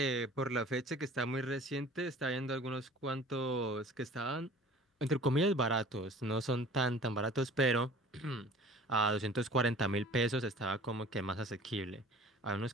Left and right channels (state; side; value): normal; both; correlation 0.46